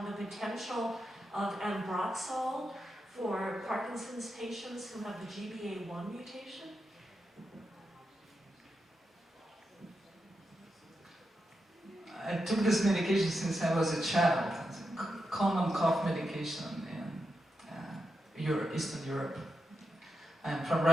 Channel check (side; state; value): both; normal; correlation 0.87